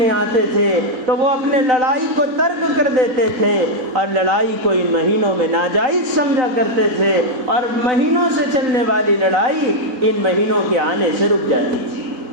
آتے تھے تو وہ اپنے لڑائی کو ترک کر دیتے تھے، اور لڑائی کو ان مہینوں میں ناجائز سمجھا کرتے تھے، اور مہینوں سے چلنے والی لڑائی ان مہینوں کے آنے سے رک جاتی تھی۔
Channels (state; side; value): late; left; 4.0 ms